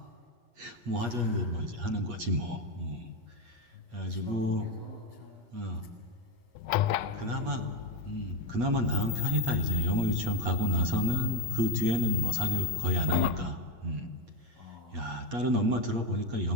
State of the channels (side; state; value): left; late; 8.4 ms